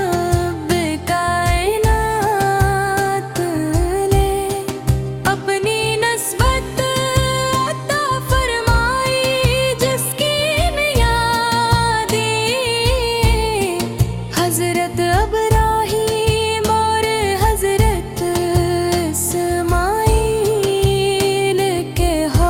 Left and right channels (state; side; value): identical; both; correlation 1.00